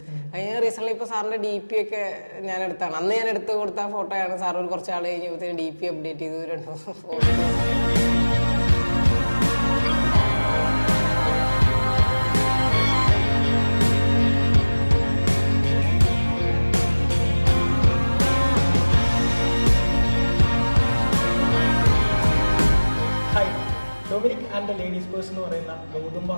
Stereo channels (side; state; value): both; inverted; correlation -1.00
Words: കഴിഞ്ഞ റീസെന്റ് ഇപ്പോൾ സാറിന്റെ DP ഒക്കെ ഞാൻ എടുത്താണ്. അന്ന് ഞാൻ എടുത്ത് കൊടുത്ത ഫോട്ടോയാണ്. സാർ ഒരു കുറച്ച് ആൾ കഴിഞ്ഞപ്പോഴത്തേക്ക് DP അപ്ഡേറ്റ് ചെയ്തു 2 photo. Dominic and the ladies purse എന്ന് പറയുന്ന ഗൗതം